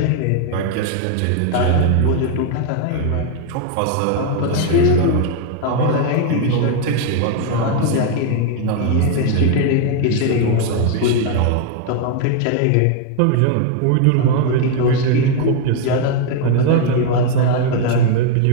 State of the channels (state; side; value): different; both; correlation 0.01